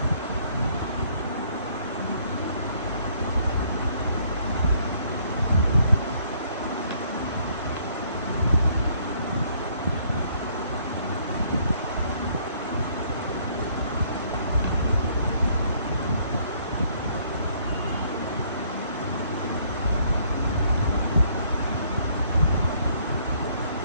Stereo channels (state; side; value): inverted; both; correlation -0.64